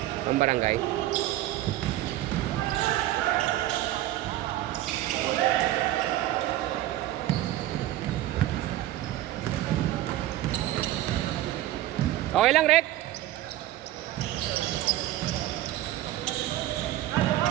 Ang barangay. Okay lang, Rek?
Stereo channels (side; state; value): left; quieter; 14.5 dB